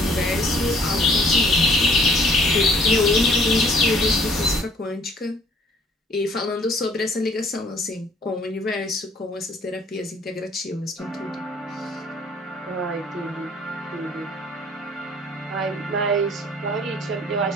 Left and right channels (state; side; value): normal; both; correlation 0.59